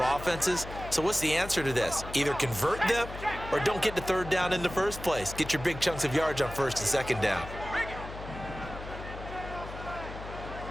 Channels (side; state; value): left; noise; hum, 11 dB below the sound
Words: offenses. So what's the answer to this? Either convert them or don't get to 3rd down in the first place. Get your big chunks of yards on 1st and 2nd down.